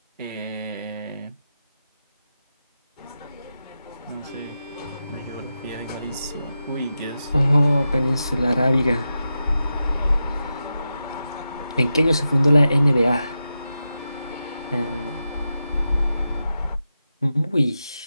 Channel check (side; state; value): both; inverted; correlation -0.90